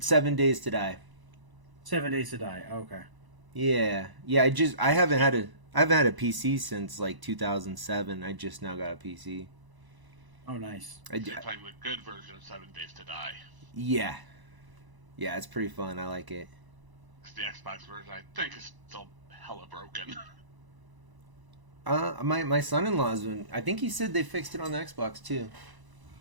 Days to Die. 7 Days to Die. Okay. Yeah. I haven't had a PC since like 2007. I just now got a PC. Oh, nice. You're playing the good version of 7 Days to Die. Yeah. Yeah, it's pretty fun. I like it. The Xbox version, I think, is still hella broken. My son-in-law's been. I think he said they fixed it on the Xbox too.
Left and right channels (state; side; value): late; left; 1.0 ms